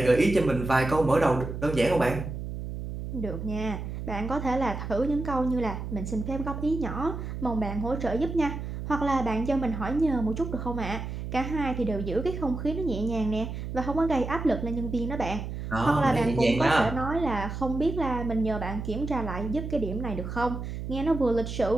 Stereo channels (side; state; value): right; noise; hum, 6 dB below the sound